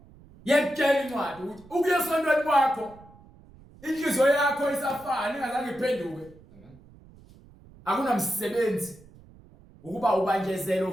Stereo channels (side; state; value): right; noise; rumble, 24 dB below the sound